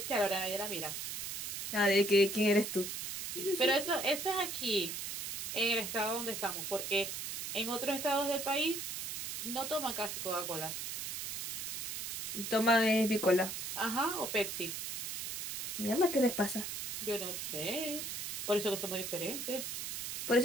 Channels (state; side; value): noise; right; hiss, 4 dB below the sound